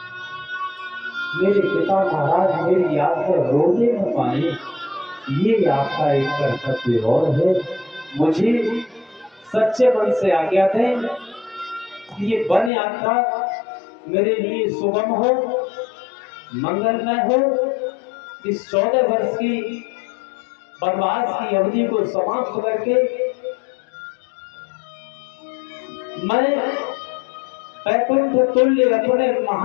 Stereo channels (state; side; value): drops out; right; at 12.7 s